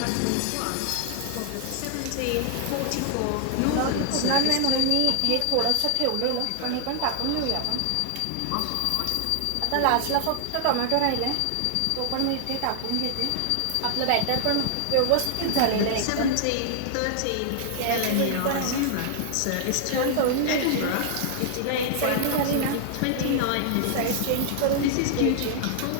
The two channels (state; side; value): different; both; correlation 0.00